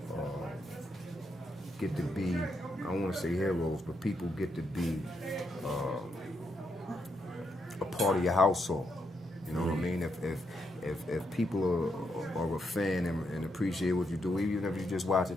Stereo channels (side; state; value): both; normal; correlation 0.79